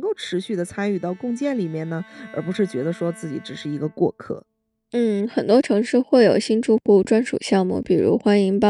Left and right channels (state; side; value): identical; both; correlation 1.00